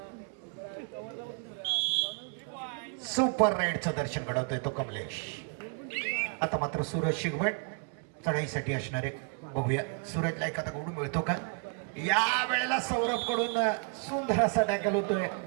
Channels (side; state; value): left; quieter; 39.9 dB